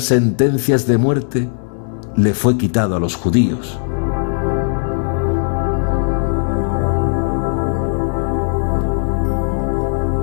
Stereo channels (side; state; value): right; silent; 68 dB below the other